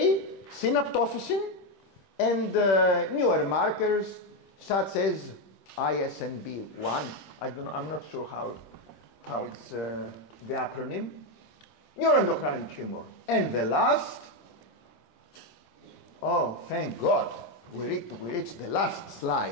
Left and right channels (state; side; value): late; right; 26 ms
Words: synaptophysin, and newer markers such as ISNB1. I'm not sure how it's the acronym. Neuroendocrine tumor. And the last, oh, thank God, we reached the last